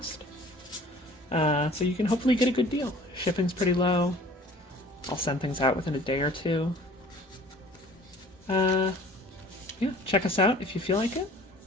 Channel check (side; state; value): both; normal; correlation 0.49